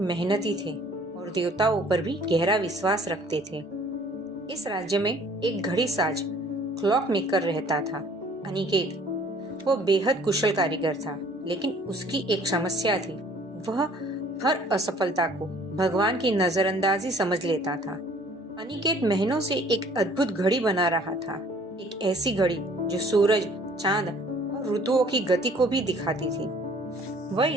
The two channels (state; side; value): normal; both; correlation 0.55